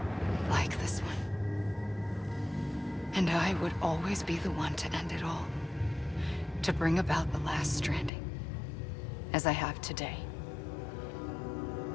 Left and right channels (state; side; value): drops out; right; at 8.1 s